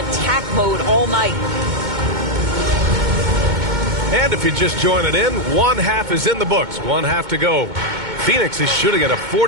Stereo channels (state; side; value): late; left; 2.2 ms